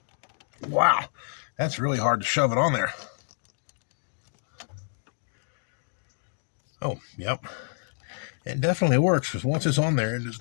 Wow, that's really hard to shove it on there. Oh, yep. It definitely works, because once it's on there, it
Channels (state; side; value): silent; right; digital silence